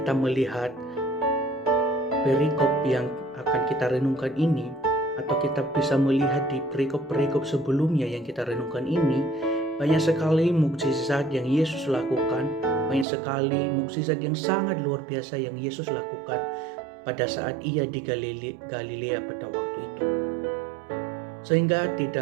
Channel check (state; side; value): drops out; left; at 13.1 s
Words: melihat perikop yang akan kita renungkan ini, atau kita bisa melihat di perikop-perikop sebelumnya yang kita renungkan ini, banyak sekali mukjizat yang Yesus lakukan, banyak sekali mukjizat yang sangat luar biasa yang Yesus lakukan pada saat ia di Galilea pada waktu itu. Sehingga